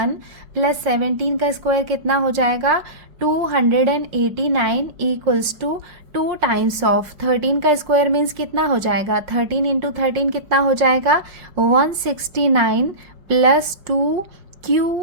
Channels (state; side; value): late; left; 5.7 ms